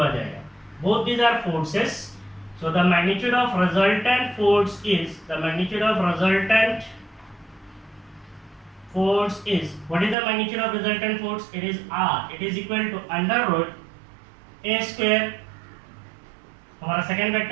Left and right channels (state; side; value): drops out; left; at 10.2 s